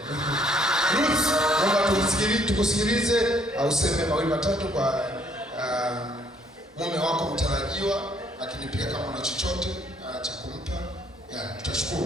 Ruth, naomba tukusikilize au useme mawili matatu kwa mume wako mtarajiwa, lakini pia kama una chochote cha kumpa,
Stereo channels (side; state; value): both; normal; correlation 0.65